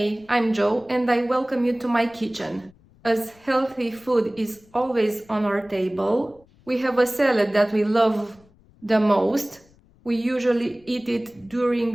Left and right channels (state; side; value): noise; left; rumble, 29 dB below the sound